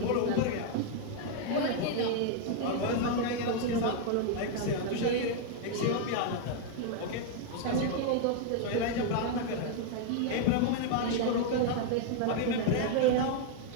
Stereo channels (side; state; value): both; different; correlation 0.00